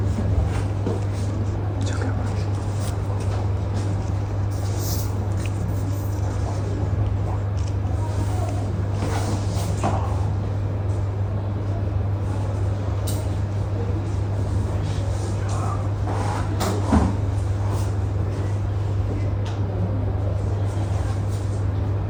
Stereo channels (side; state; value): both; identical; correlation 1.00